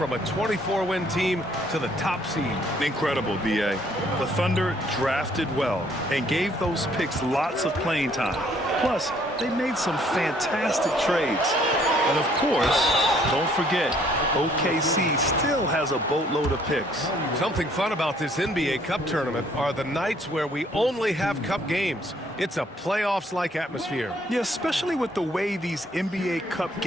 a 24-win team to the top seed. Incredible, B.A. The Thunder drafted well and gave those picks lots of playing time. Plus, they made some fantastic trades. And of course, don't forget, OKC still has a boatload of picks. Something fun about this NBA Cup tournament are the nights where we only have Cup games. It's a playoffs-like atmosphere. Yeah, especially with the way these NBA Cup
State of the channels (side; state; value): both; normal; correlation 0.63